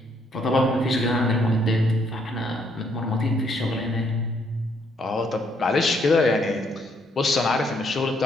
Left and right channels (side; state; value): both; normal; correlation 0.70